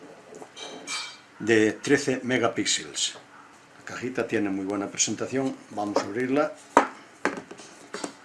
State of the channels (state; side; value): identical; both; correlation 1.00